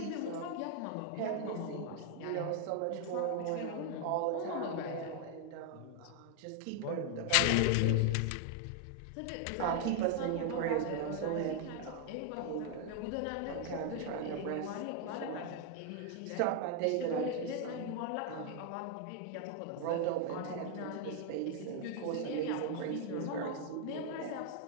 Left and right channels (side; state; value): both; different; correlation 0.00